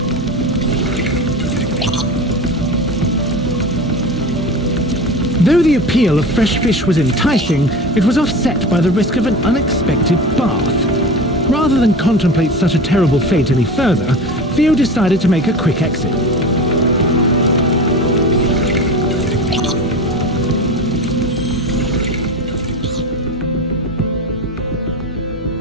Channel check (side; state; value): both; normal; correlation 0.30